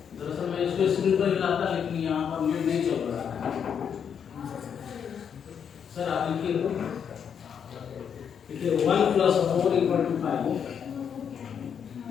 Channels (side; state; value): right; quieter; 7.6 dB